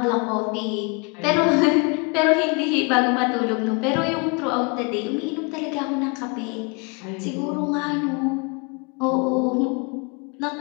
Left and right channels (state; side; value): quieter; right; 32.0 dB